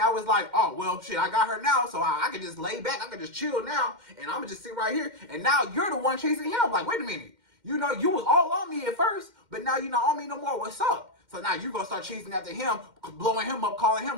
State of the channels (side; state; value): left; late; 2.1 ms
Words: it's like, oh well, shit, I got her now, so I can just lay back, I can just chill now, and I'm gonna just sit right here. And now you're the one chasing him. Like, wait a minute. You know, you was all on me at first, but now you're not on me no more. What's up? So now you're going to start chasing after him, blowing him up, calling